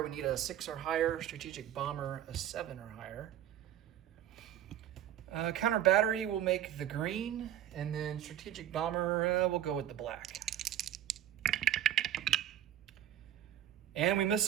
we need a 6 or higher. Strategic bomber, a 7 or higher. Counter battery will make the green, and then strategic bomber will go with the black. And we miss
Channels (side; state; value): left; quieter; 11.3 dB